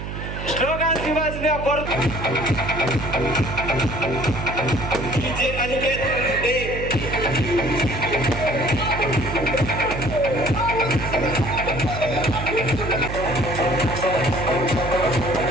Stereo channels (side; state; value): right; noise; hum, 7 dB below the sound